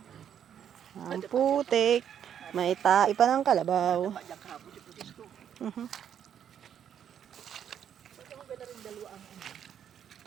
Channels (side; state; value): left; quieter; 9.1 dB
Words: Ang putik. May tai pa ng kalabaw.